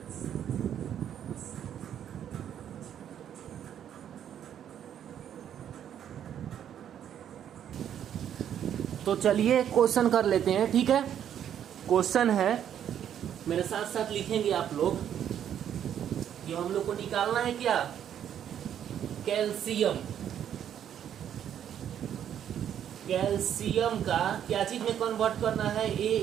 तो चलिए क्वेश्चन कर लेते हैं, ठीक है। क्वेश्चन है, मेरे साथ साथ लिखेंगे आप लोग कि हम लोग को निकालना है क्या? कैल्शियम। कैल्शियम का क्या चीज में कन्वर्ट करना है?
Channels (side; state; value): left; quieter; 9.7 dB